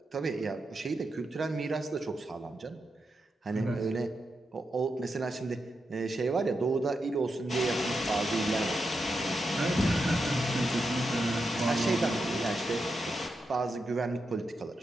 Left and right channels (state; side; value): normal; both; correlation 0.87